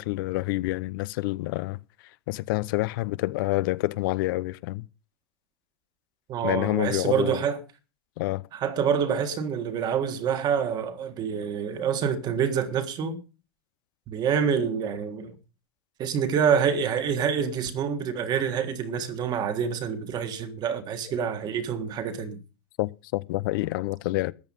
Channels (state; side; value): normal; both; correlation 0.17